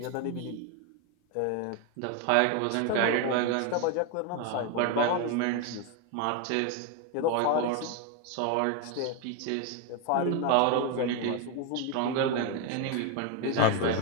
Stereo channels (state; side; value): different; both; correlation 0.01